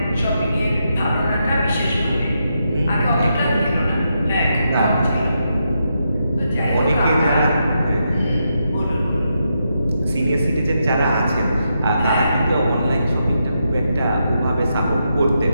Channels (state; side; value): inverted; both; correlation -0.83